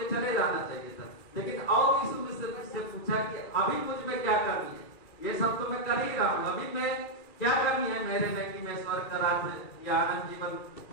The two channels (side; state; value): right; late; 2.3 ms